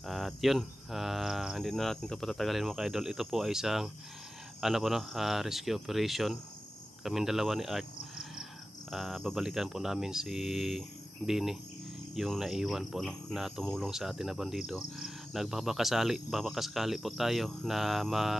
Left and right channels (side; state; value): both; normal; correlation 0.95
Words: At yun, hindi na natin ito patatagalin mga ka-idol. Ito po ay isang rescue operation. Kaming dalawa ni Art, babalikan po namin si Bini, yung naiwan po, no, na tumulong sa atin na bandido. Nagbabakasakali po tayo na